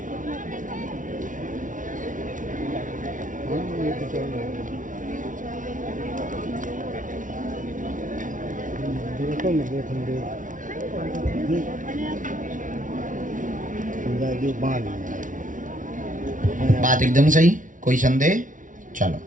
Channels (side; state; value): left; late; 0.38 ms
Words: मैं देखूंगे जो बाल बात एकदम सही, कोई संदेह? चलो